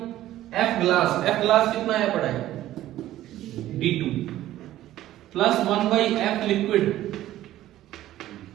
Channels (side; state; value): left; quieter; 14.0 dB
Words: ग्लास, F ग्लास कितना है पड़ा है D2, plus 1/F liquid